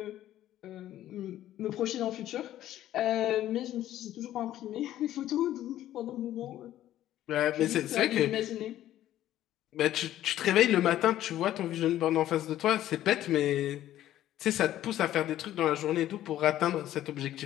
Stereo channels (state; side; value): quieter; right; 13.0 dB